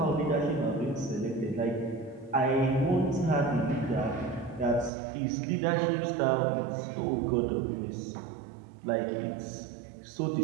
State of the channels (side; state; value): left; drops out; at 4.9 s